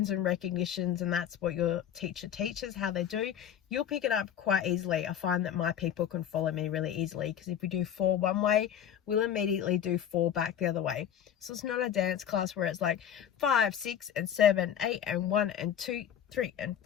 and recognitions and that's what your teacher teaches, how they do, you'll pick it up quite easily. I find that my people can follow me really easily, because if we do 4 one way, we'll immediately do 4 back the other way. So it's not a dance class where it's like 5, 6 and 7, 8 and 1 and 2, 3 and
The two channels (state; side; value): quieter; right; 9.5 dB